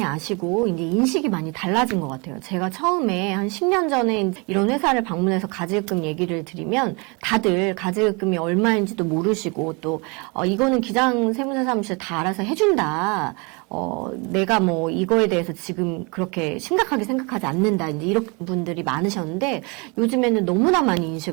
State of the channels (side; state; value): left; quieter; 30.0 dB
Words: 아시고 이제 인식이 많이 달라진 것 같아요. 제가 처음에 한 10년 전에 이런 회사를 방문해서 가지급금 얘기를 드리면 다들 가지급금이 얼마인지도 모르시고 또 이거는 기장 세무사 사무실 다 알아서 해준다. 내가 뭐 이거에 대해서 지금 그렇게 심각하게 생각하지 않는다. 이제 이런 분들이 많으셨는데 요즘에는 너무나 많이